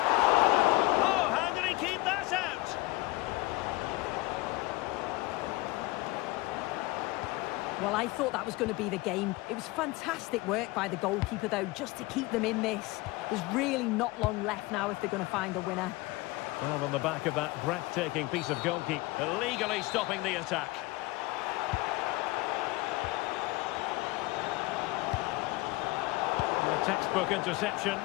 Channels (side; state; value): right; quieter; 21.1 dB